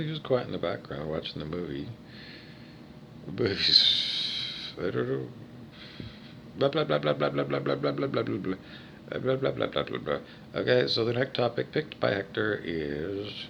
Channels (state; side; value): identical; both; correlation 1.00